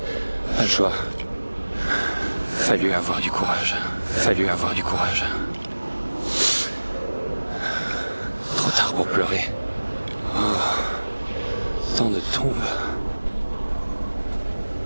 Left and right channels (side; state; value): both; inverted; correlation -1.00